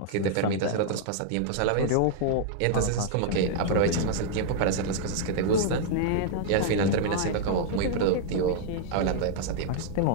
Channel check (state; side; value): different; both; correlation -0.01